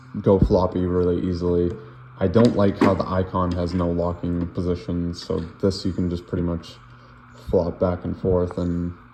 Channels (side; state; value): both; identical; correlation 1.00